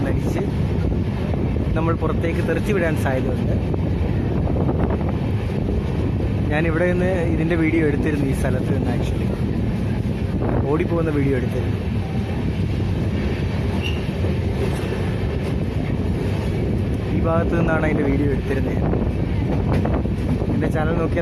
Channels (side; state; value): both; identical; correlation 1.00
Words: നമ്മൾ പുറത്തേക്ക് തെറിച്ച് വിടാൻ സാധ്യതയുണ്ട്. ഞാനിവിടെ നിന്ന് ഇതിൻ്റെ വീഡിയോ എടുത്തിരുന്നു. ഈ സ്ഥലത്ത് നിന്ന് ആക്ച്വലി ഓടിപ്പോകുന്ന വീഡിയോ എടുത്തിരുന്നു. ഈ ഭാഗത്ത് നിന്നാണ് അതിൻ്റെ വീഡിയോ എടുത്തിരുന്നത്. എൻ്റെ ചാനൽ